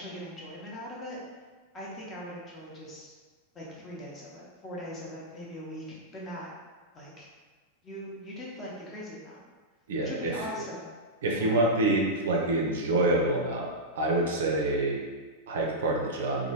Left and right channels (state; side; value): normal; both; correlation -0.11